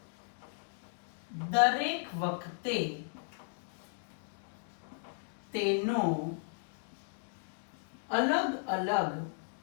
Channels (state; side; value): silent; right; digital silence